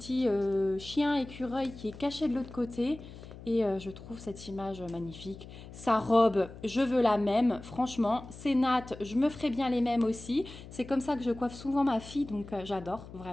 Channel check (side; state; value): left; noise; hum, 15 dB below the sound